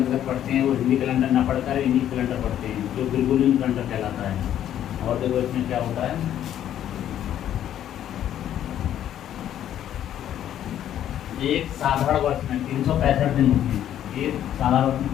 पढ़ते हैं वो हिंदी कैलेंडर ना पढ़कर इंग्लिश कैलेंडर पढ़ते हैं, जो बिल्कुल कैलेंडर कहलाता है। और देखो इसमें क्या होता है, एक साधारण वर्ष में 365 दिन होते हैं। एक साधारण वर्ष में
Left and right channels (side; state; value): right; quieter; 11.0 dB